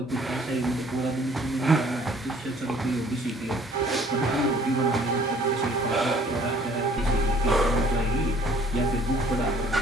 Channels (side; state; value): both; normal; correlation 0.56